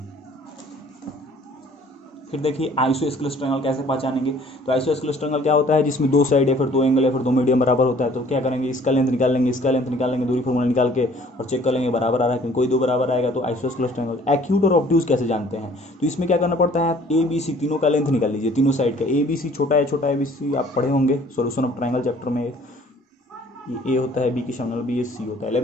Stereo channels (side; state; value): both; normal; correlation 0.55